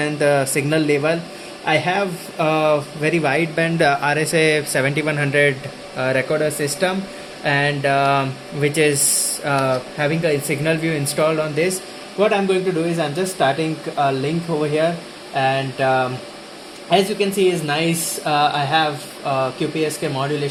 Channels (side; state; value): both; identical; correlation 1.00